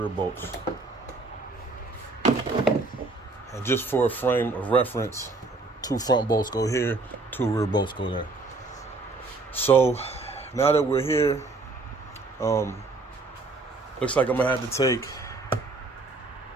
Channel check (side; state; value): left; quieter; 3.4 dB